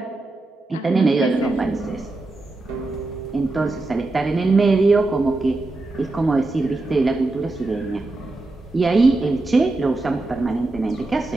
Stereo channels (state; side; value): quieter; left; 3.1 dB